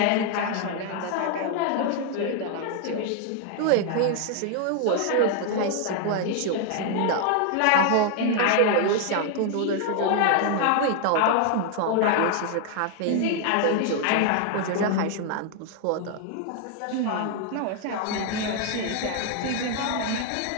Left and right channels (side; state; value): both; different; correlation 0.00